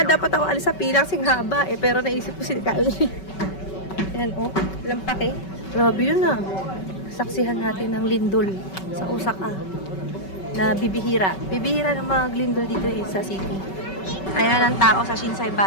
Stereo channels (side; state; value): right; late; 5.3 ms